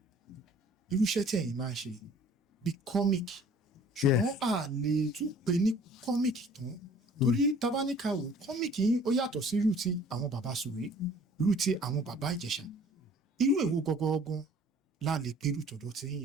irúṣẹ́ tí ẹ̀yin máa ń ṣe bí comic ṣùgbọ́n a lè tún pè ní comic tán torí tabaníkà wò comic yín ó yàtọ̀ sí irú ti àwọn bàbá Sùwé irú ti àwọn bàbá Ìjẹ̀ṣà irú èwo gangan la lè pe irú tọ̀dọ̀ tí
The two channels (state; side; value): normal; both; correlation 0.52